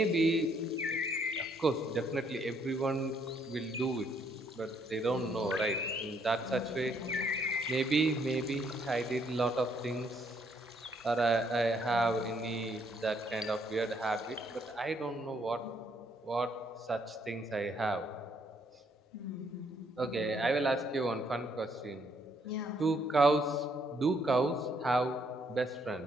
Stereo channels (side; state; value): both; normal; correlation 0.69